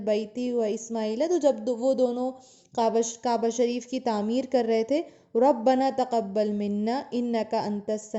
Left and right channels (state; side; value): identical; both; correlation 1.00